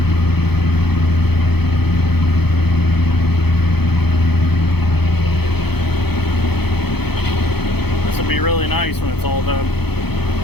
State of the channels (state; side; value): late; right; 0.97 ms